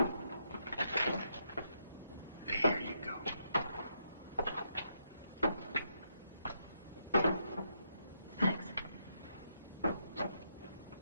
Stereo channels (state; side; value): inverted; both; correlation -0.78